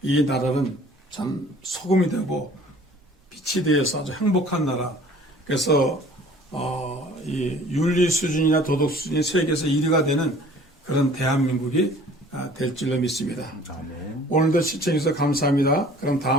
이 나라는 참 소금이 되고 빛이 되어서 아주 행복한 나라. 그래서 이 윤리 수준이나 도덕 수준이 세계에서 1위가 되는 그런 대한민국이 될 줄로 믿습니다. 아멘. 오늘도 시청해주셔서 감사합니다. 그럼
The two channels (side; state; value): both; normal; correlation 0.51